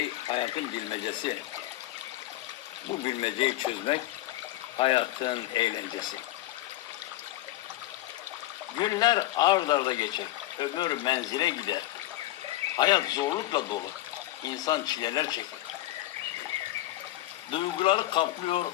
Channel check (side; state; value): right; quieter; 16.2 dB